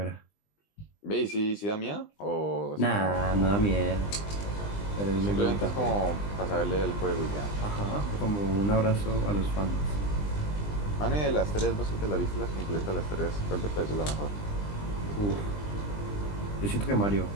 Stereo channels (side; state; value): right; late; 20 ms